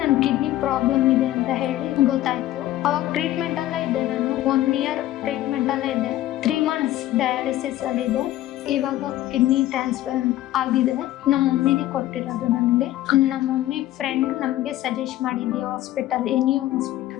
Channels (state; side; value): quieter; right; 14.5 dB